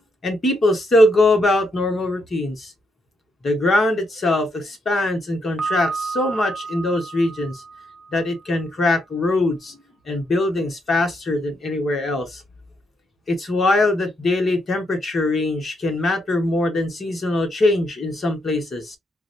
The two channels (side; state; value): both; normal; correlation 0.79